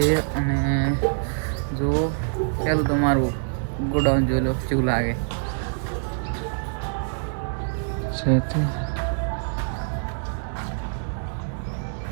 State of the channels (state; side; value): silent; left; digital silence